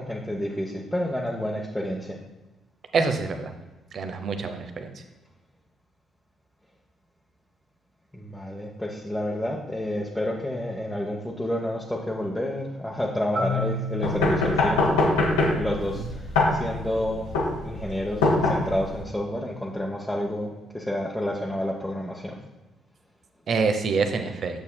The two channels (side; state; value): both; normal; correlation 0.73